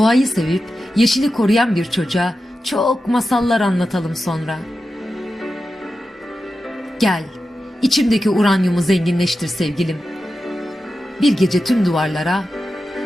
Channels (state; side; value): normal; both; correlation 0.91